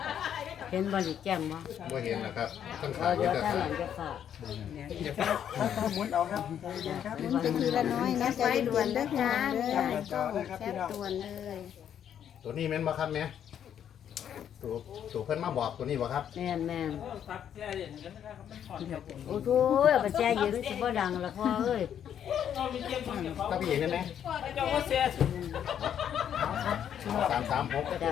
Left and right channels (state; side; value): quieter; right; 9.3 dB